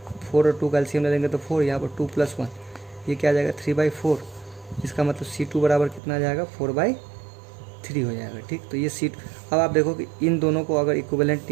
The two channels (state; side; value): drops out; left; at 6.0 s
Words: 4 और 2 कैल्शियम ले लेंगे तो 4, यहाँ पर 2 + 1, ये क्या आ जाएगा, 3/4। इसका मतलब C2 बराबर कितना आ जाएगा, 4/3 हो जाएगा। ठीक, तो ये C2। अब आप देखो कि इन दोनों को अगर इक्विवेलेंट